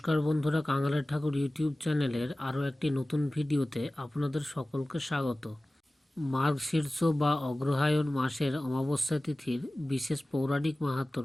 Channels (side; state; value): both; normal; correlation 0.97